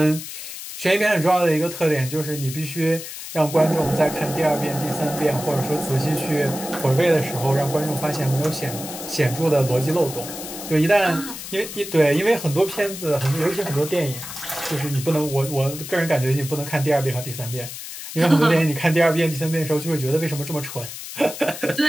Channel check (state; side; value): noise; left; hiss, 10 dB below the sound